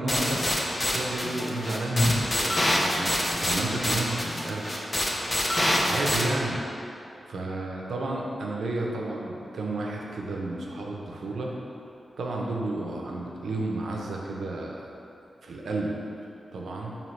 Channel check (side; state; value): both; normal; correlation 0.90